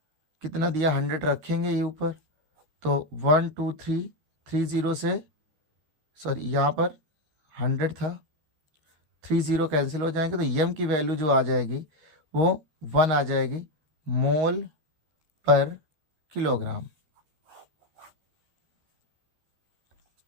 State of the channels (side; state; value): left; late; 13 ms